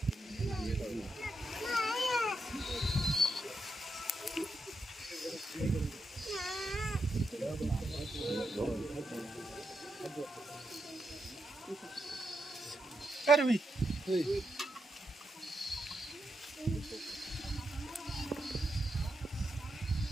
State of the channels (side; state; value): both; normal; correlation 0.84